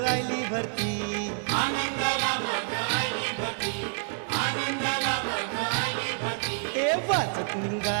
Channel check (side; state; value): left; silent; 59 dB below the other